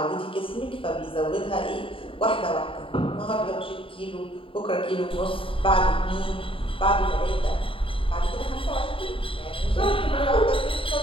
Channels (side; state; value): right; late; 0.26 ms